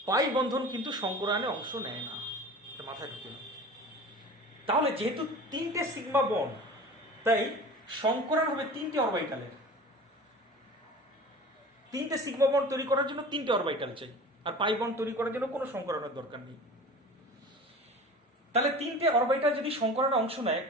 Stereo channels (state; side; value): normal; both; correlation 0.37